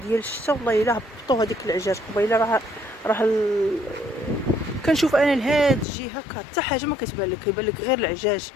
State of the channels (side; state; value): right; drops out; at 5.9 s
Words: ديال الشتا والله الا هبطوا هذيك العجاج قبيله. راه كنشوف انا لهاد الجهه حتى حاجه ما كتبان لك، كيبان لك غير العجاج.